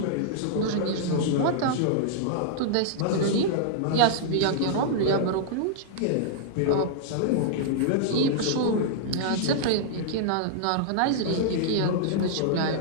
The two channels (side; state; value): both; different; correlation -0.01